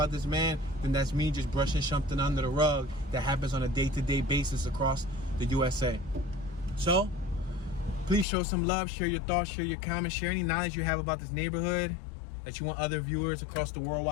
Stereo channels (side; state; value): right; drops out; at 8.2 s